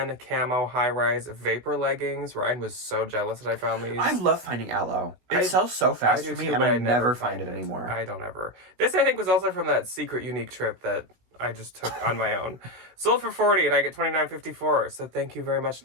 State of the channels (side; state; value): left; late; 16 ms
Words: camo high-rise vapor leggings. Ryan was so jealous that I found these. I love finding aloe. It sells so fast for me and I never find it anymore. I don't ever. This I think was also from that secret unique trip that I just took on my own. Sold for $40 and I get $29.54. So thank you very much,